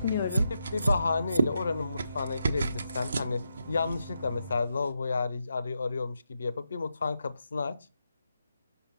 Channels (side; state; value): both; inverted; correlation -0.84